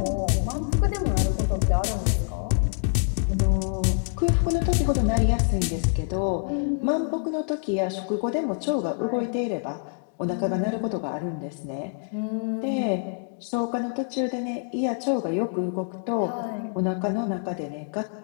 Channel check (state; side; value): silent; right; 61 dB below the other